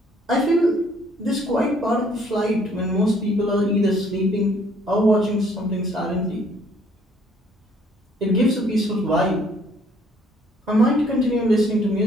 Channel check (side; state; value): both; normal; correlation 0.62